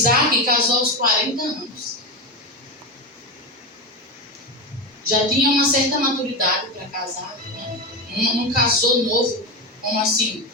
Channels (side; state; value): both; normal; correlation 0.17